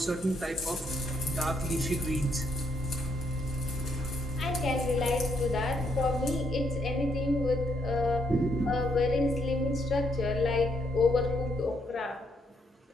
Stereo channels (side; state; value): both; normal; correlation 0.75